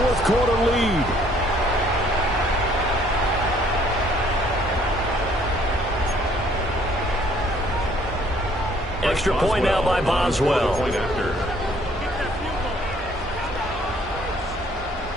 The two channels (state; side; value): normal; both; correlation 0.61